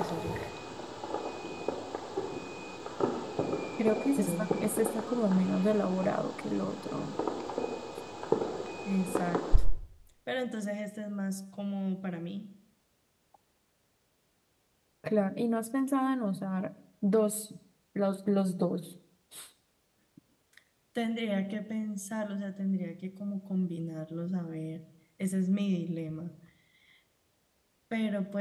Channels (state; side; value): identical; both; correlation 1.00